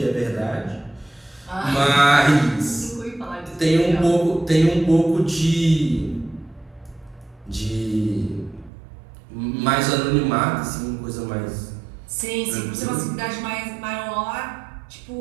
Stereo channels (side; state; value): left; drops out; at 8.7 s